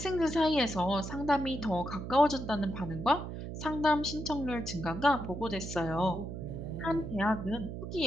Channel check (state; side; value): noise; right; hum, 7 dB below the sound